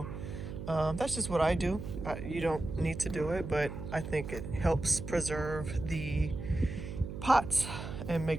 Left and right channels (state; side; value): noise; right; hum, 8 dB below the sound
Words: That's just what I do. You don't need to do it, but I think it helps preserve the pots and